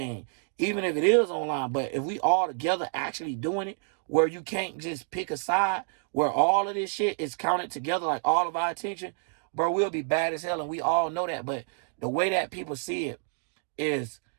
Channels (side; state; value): left; silent; 59 dB below the other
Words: even if it is online, but if we all together actually doing it, where you can't just pick a side, where all of this shit is counted together, like all of our attention, bro, we'll be bad as hell, and we all know that. But the way that people see it is,